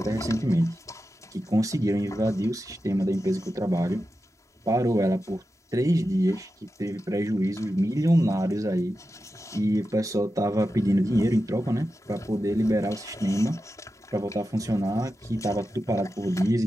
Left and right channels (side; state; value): both; normal; correlation 0.91